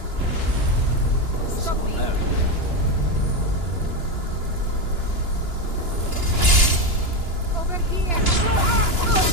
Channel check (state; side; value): late; left; 2.9 ms